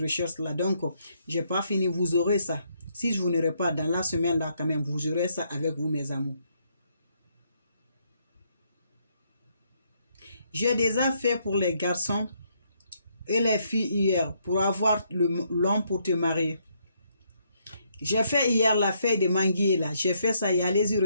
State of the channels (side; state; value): both; inverted; correlation -0.73